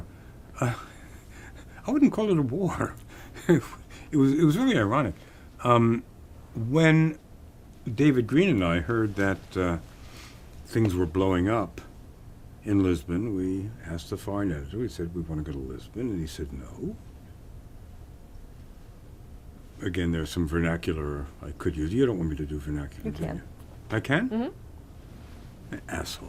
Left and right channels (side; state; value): both; identical; correlation 1.00